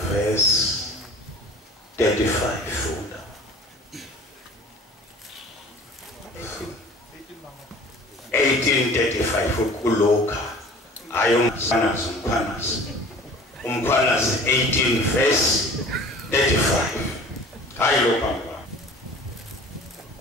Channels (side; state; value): both; normal; correlation 0.44